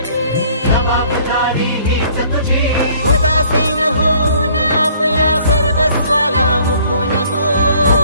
उदासीन होऊन आपल्या सर्वस्वाला मुकू नको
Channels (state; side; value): inverted; both; correlation -0.58